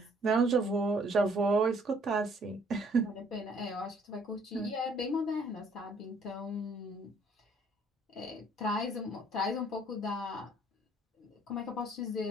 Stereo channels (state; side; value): normal; both; correlation 0.62